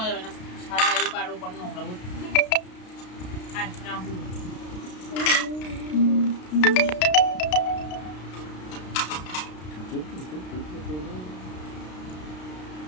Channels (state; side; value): late; right; 33 ms